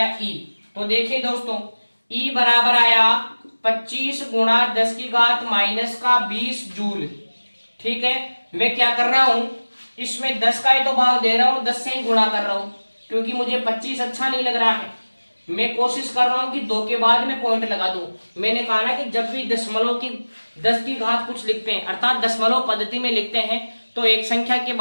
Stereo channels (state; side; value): inverted; both; correlation -1.00